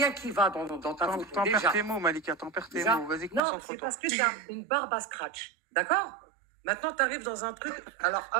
rien qui va dans ta photo. T'en Déjà. perds tes mots, Malika, t'en perds tes Déjà. mots. Vas-y, Non, c'est concentre-toi. parce que tu as une barbe à scratch. D'accord? Maintenant, tu arrives dans un truc. Alors,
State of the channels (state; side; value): drops out; left; at 3.4 s